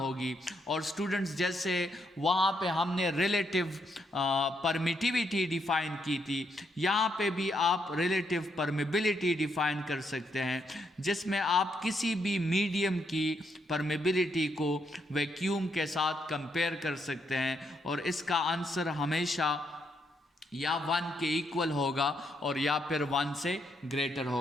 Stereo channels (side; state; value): both; normal; correlation 0.77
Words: और स्टूडेंट्स, जैसे वहाँ पे हमने रिलेटिव परमिटिविटी डिफ़ाइन की थी, यहाँ पे भी आप रिलेटिव परमिबिलिटी डिफ़ाइन कर सकते हैं, जिसमें आप किसी भी मीडियम की परमिबिलिटी को वैक्यूम के साथ कंपेयर कर सकते हैं, और इसका आंसर हमेशा या 1 के इक्वल होगा और या फिर 1 से ग्रेटर